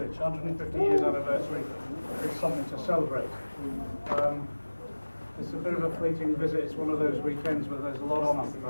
150 years anniversary is something to celebrate. It's a bit of a fleeting visit. It's one of those weekends where there's a lot on, I'm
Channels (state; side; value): inverted; both; correlation -1.00